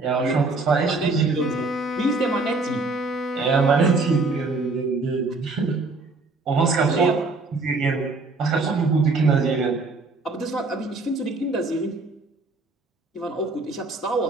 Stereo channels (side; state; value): left; quieter; 3.5 dB